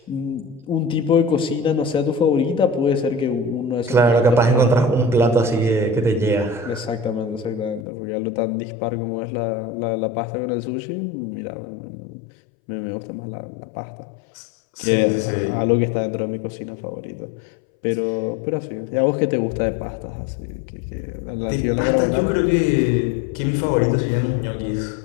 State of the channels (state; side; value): drops out; right; at 7.9 s